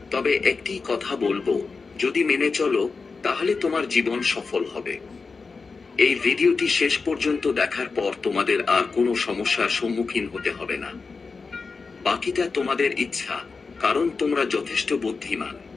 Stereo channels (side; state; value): right; quieter; 4.5 dB